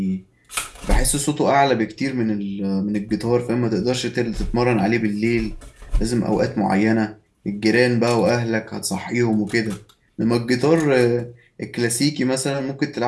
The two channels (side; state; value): both; identical; correlation 1.00